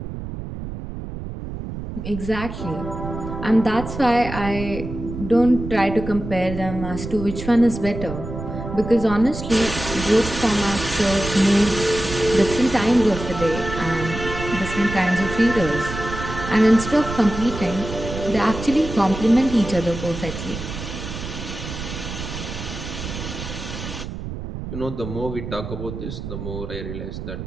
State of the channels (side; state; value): right; noise; rumble, 8 dB below the sound